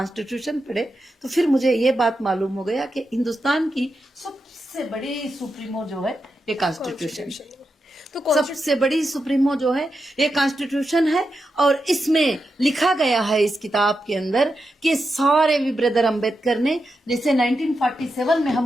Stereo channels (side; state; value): both; normal; correlation 0.88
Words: पढ़े तो फिर मुझे ये बात मालूम हो गया कि हिंदुस्तान की सबसे बड़ी सुप्रीमो जो है ये कॉन्स्टिट्यूशन, तो सबसे बड़ी सुप्रीमो जो है ये कॉन्स्टिट्यूशन है। और इसमें लिखा गया है इस किताब के अंदर कि सारे भी ब्रदर अम्बेडकर ने, जैसे 1947 में